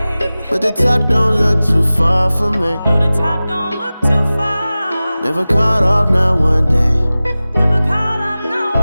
But the top don't look too far for me. No, the top don't look too far. Never caught off, not one day. Never caught off, not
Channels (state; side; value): inverted; both; correlation -0.97